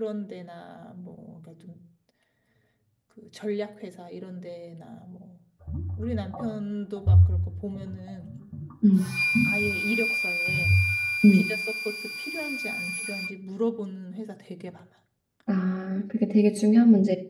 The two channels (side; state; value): both; identical; correlation 1.00